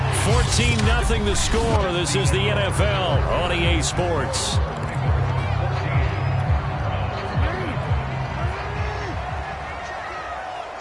14-0 the score. This is the NFL on EA Sports.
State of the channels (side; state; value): both; identical; correlation 1.00